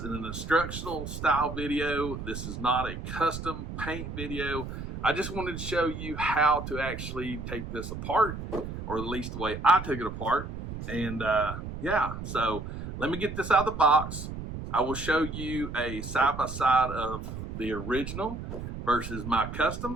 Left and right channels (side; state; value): right; noise; rumble, 7 dB below the sound